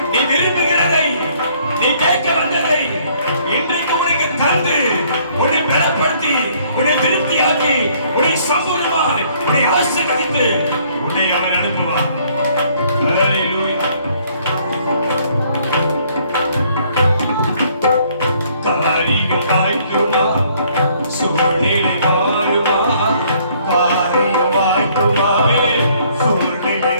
நீ விரும்புகிறதை, நீ கேட்க வந்ததை இன்றைக்கு உனக்கு தந்து உன்னை பலப்படுத்தி, உன்னை திருப்தியாக்கி, உன்னை சம்பூர்ணமாய் உன்னை ஆசீர்வதித்து உன்னை அவர் அனுப்புவார். ஹல்லேலூயா. காரியம் வாய்க்குமா, சூழ்நிலை மாறுமா. காரியம் வாய்க்குமா, சூழ்நிலை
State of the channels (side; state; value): both; inverted; correlation -0.63